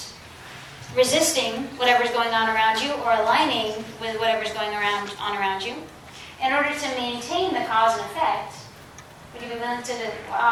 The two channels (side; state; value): both; identical; correlation 1.00